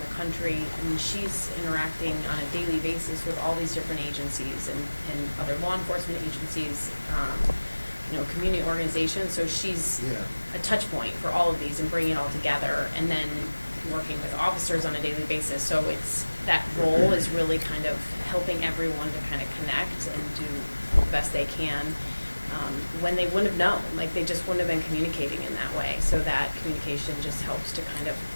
country, she's interacting on a daily basis with all these different agencies and other law enforcement agencies, community organizations. So she's a touch point for all of these and bringing it all together, and then working with officers on a daily basis. So that role is really kind of helping everyone to kind of connect and do the best they can. When they wouldn't have known, they just wouldn't have been communicating in that way. So that communication just helps to kind of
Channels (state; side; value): inverted; both; correlation -1.00